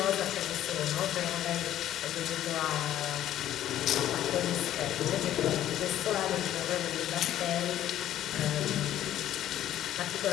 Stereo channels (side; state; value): right; quieter; 12.1 dB